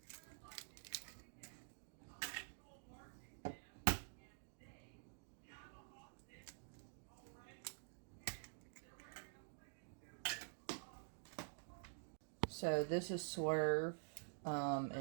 So this is Swerve.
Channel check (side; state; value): left; silent; digital silence